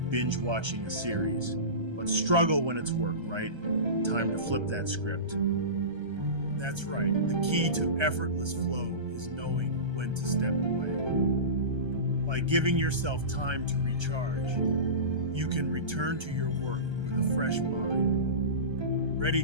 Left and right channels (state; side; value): late; left; 1.3 ms